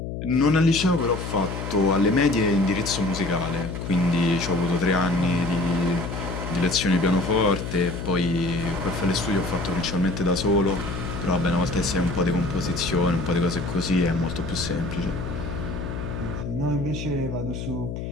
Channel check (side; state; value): left; noise; hum, 6 dB below the sound